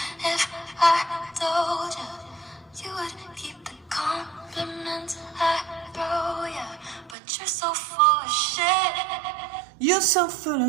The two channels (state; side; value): drops out; left; at 7.2 s